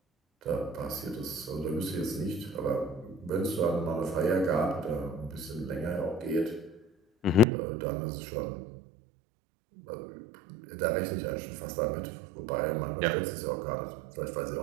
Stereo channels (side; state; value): left; drops out; at 7.5 s